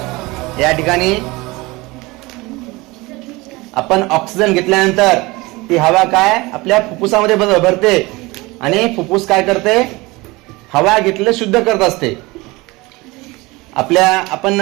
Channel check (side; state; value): left; quieter; 22.6 dB